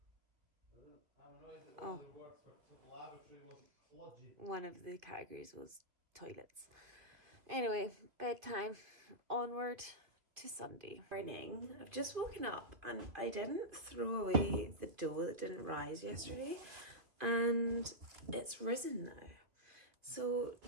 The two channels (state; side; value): late; left; 2.4 ms